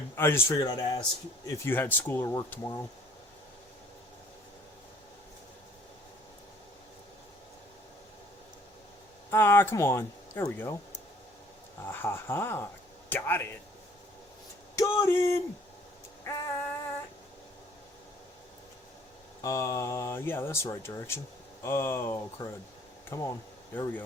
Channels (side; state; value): both; normal; correlation 0.57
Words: I just figured I'd ask if you had school or work tomorrow. Ah, come on. There we go. Ah ha ha. Got it. Got him! Yeah, that's the right direction. Oh, crud. Come on. There we